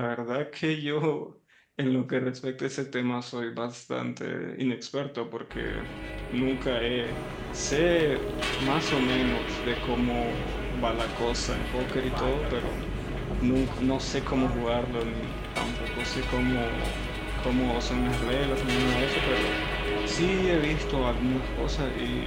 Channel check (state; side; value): identical; both; correlation 1.00